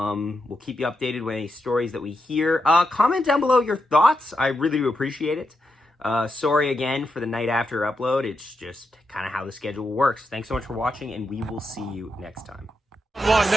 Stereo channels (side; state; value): both; normal; correlation 0.85